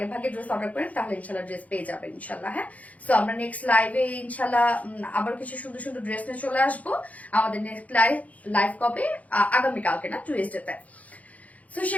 ভাগে ড্রেস অর্ডার করেন তাহলে ইনশাল্লাহ ড্রেস পেয়ে যাবেন ইনশাল্লাহ। হ্যাঁ, সো আমরা নেক্সট লাইভে ইনশাল্লাহ আবার কিছু সুন্দর সুন্দর ড্রেস নিয়ে চলে আসবো। আমাদের নেক্সট লাইভ কবে? আগামীকালকে না, টুইসডেতে। সো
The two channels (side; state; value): right; late; 0.070 ms